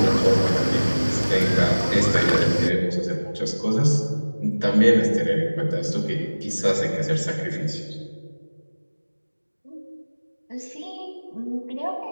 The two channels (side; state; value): both; inverted; correlation -1.00